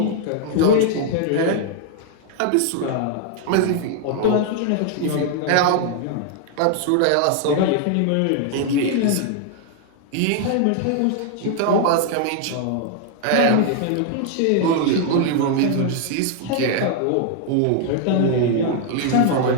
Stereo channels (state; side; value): different; both; correlation 0.00